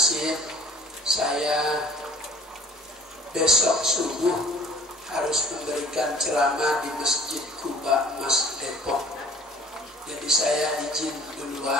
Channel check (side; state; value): both; normal; correlation 0.50